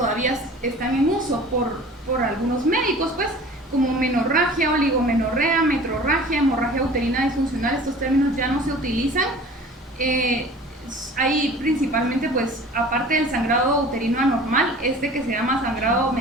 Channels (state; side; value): normal; both; correlation 0.44